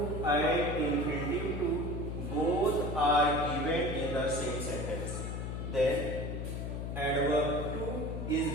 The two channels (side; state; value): left; noise; hum, 4 dB below the sound